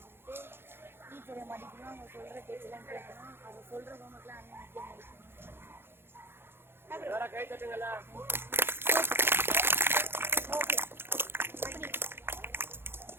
டீச்சரை மதிக்கணும், அவங்க சொல்கிற பேச்செல்லாம் கேட்கணும், அவங்க சொல்கிற ஹோம்ஒர்க்லாம் அண்ணன் முக்கியம் முடிக்கணும். கை தட்டுங்களா.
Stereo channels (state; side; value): late; left; 0.11 ms